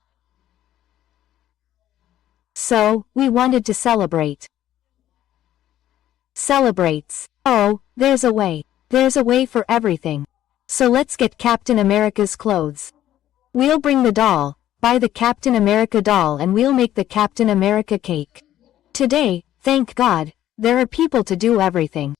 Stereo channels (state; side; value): quieter; right; 12.5 dB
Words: So, we wanted to celebrate. Celebrates. Oh, there's a way. There's a way for everything. So let's get Captain America's clothes. We'll bring the doll, buy the Captain America doll and we'll make the Captain America cake. Today, thank God, there are people to do everything.